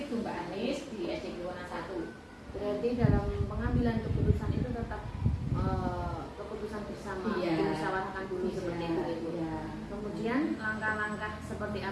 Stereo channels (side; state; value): both; identical; correlation 1.00